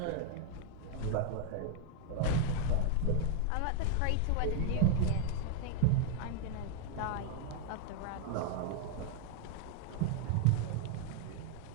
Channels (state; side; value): different; both; correlation 0.00